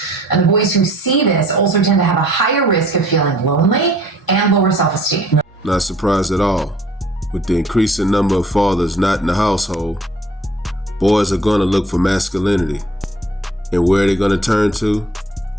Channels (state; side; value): normal; both; correlation 0.54